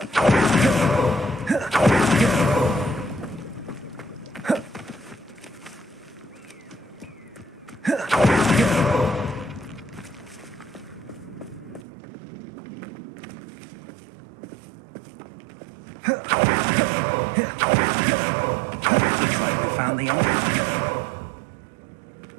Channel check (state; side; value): drops out; left; at 11.9 s